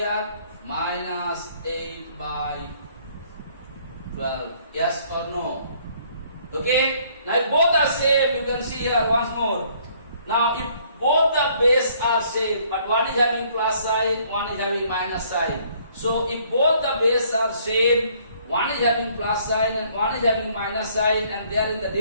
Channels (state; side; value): inverted; both; correlation -0.62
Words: Minus 8 by 12. Yes or no? Okay, now if both are same, you can see here once more. Now if both the base are same, but one is having plus sign, one is having minus sign. So if both the base are same, one is having plus sign and one is having minus sign, and they are in the